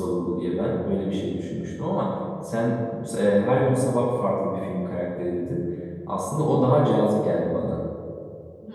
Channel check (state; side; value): identical; both; correlation 1.00